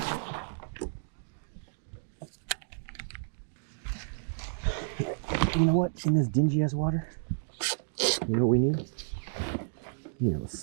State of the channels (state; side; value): silent; left; digital silence